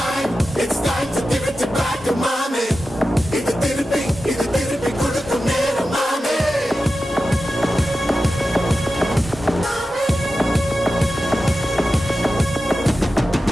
time to give it back to mommy. இது திருப்பி கொடுக்கும் நேரம் மாமே.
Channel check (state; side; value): normal; both; correlation 0.93